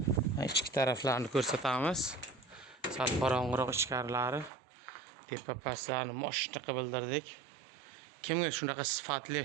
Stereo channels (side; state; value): left; drops out; at 4.5 s